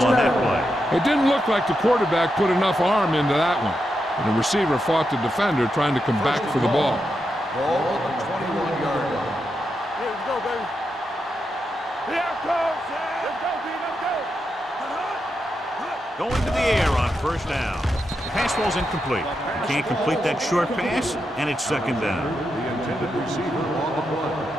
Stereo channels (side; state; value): both; normal; correlation 0.86